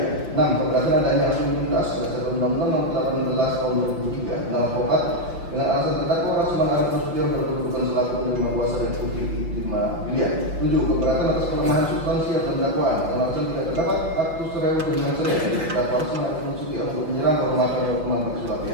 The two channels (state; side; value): late; left; 5.7 ms